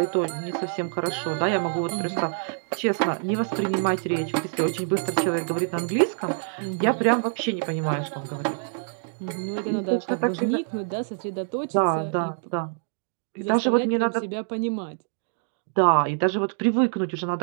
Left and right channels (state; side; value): silent; left; digital silence